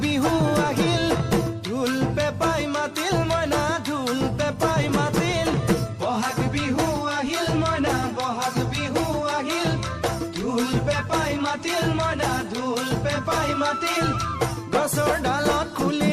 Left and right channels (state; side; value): identical; both; correlation 1.00